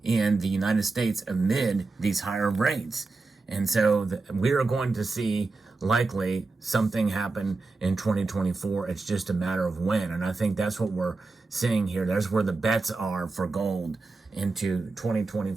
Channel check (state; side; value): quieter; left; 3.7 dB